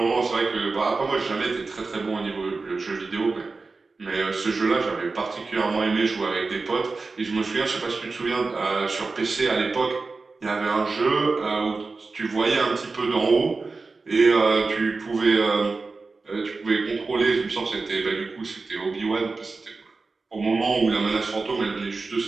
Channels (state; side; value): quieter; left; 4.0 dB